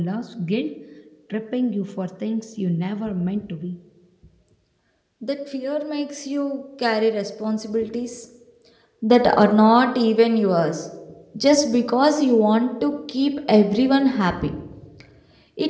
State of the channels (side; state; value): both; identical; correlation 1.00